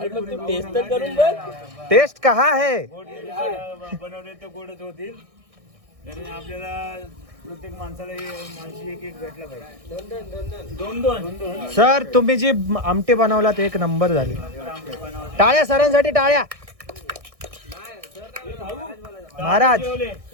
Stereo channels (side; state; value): left; late; 1.6 ms